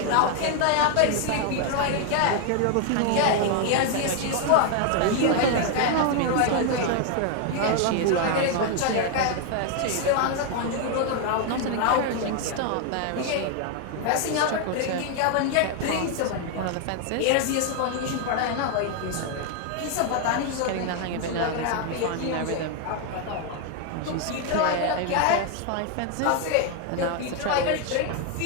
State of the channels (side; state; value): both; different; correlation 0.01